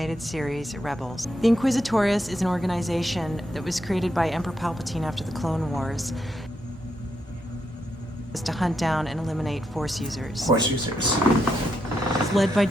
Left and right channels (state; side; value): normal; both; correlation 0.81